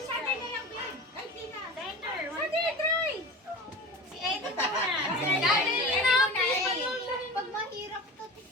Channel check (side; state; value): both; normal; correlation 0.33